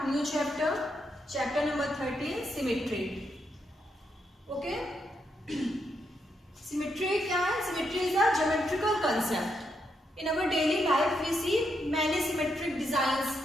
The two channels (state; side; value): normal; both; correlation 0.80